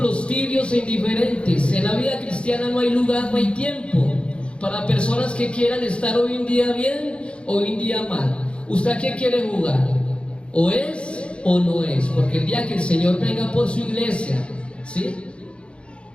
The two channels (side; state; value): right; late; 0.058 ms